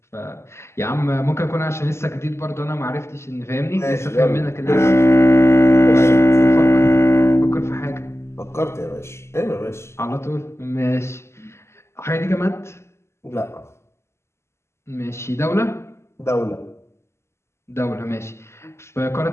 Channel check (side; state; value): right; late; 0.13 ms